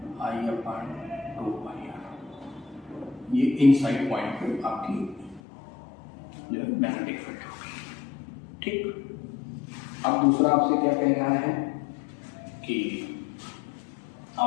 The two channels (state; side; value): drops out; right; at 5.4 s